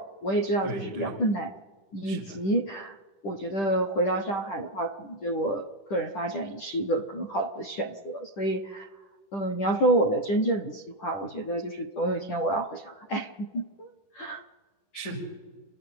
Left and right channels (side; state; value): right; late; 10 ms